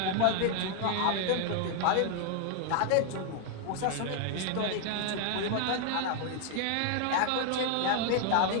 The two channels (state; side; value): different; both; correlation 0.00